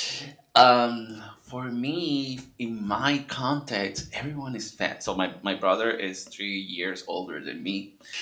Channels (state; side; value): identical; both; correlation 1.00